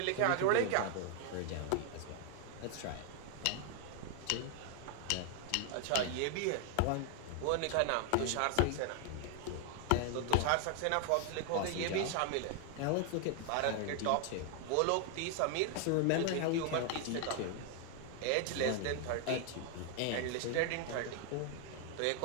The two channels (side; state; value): both; different; correlation 0.00